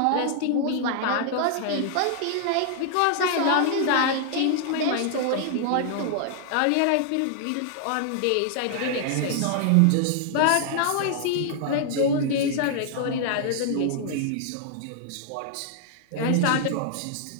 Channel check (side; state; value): both; different; correlation -0.01